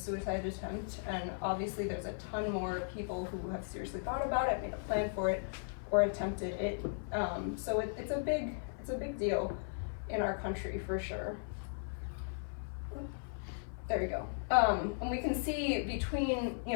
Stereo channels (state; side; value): silent; right; 53 dB below the other